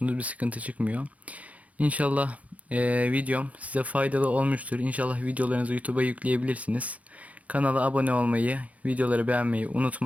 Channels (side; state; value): left; late; 0.068 ms